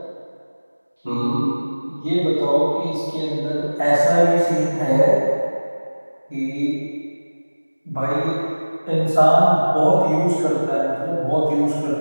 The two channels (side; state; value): both; inverted; correlation -1.00